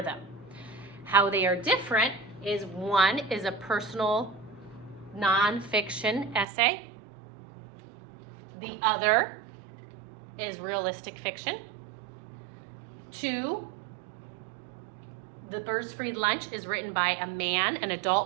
them. How they are different is one is a personal nonfiction essay. The other is realistic fiction. 2, the Birds Free Lunch is written by a man, an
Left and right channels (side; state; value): left; drops out; at 6.5 s